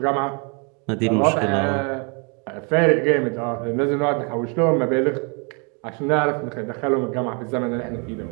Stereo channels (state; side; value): quieter; left; 35.4 dB